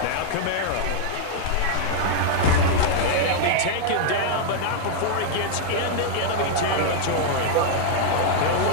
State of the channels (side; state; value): both; different; correlation -0.01